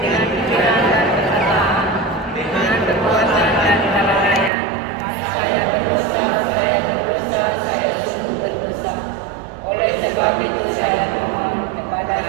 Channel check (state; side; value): drops out; left; at 4.5 s